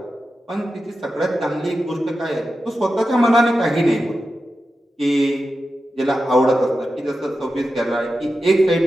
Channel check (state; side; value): normal; both; correlation 0.91